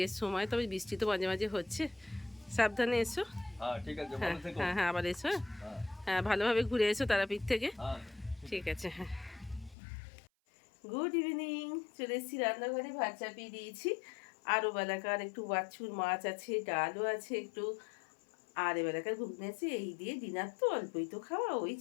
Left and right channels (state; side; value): drops out; right; at 9.8 s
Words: সময়, তবে বৃষ্টি তো মাঝে মাঝে হচ্ছে। সাবধানে এসো। ঠিক আছে, হ্যাঁ ভালো থেকো। হ্যাঁ হ্যাঁ, আবার এসো। হ্যাঁ, হ্যাঁ, ভালোভাবে ঘুরে এসো তারাপীঠ থেকে। হ্যাঁ। ঠিক আছে, হ্যাঁ। গুড ইভিনিং, চলে এসেছি রান্নাঘরে, ভাত চাপিয়ে দিয়েছি। আরও বেলাকার একটু বাছুর মাছ আছে, ডালও আছে একটু, আর এবেলাকার ঘুগনি আছে, এই দিয়ে ডিনার তো অল্পই তো খাওয়া, ওই